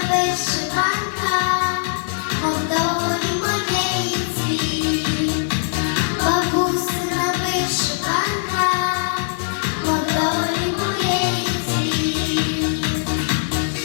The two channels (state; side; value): silent; right; 56 dB below the other